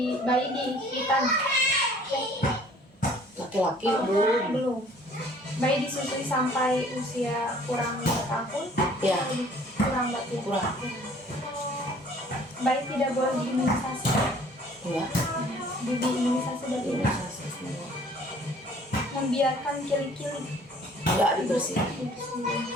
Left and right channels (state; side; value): normal; both; correlation 0.54